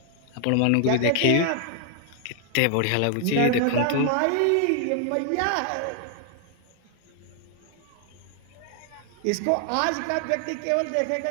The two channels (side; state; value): both; different; correlation 0.00